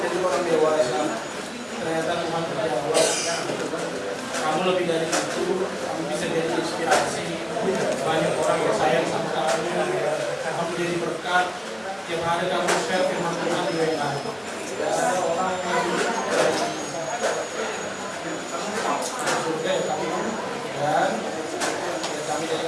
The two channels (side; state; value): both; identical; correlation 1.00